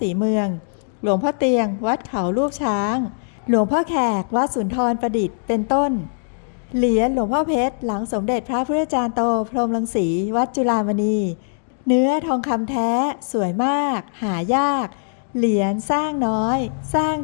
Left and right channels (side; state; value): right; silent; digital silence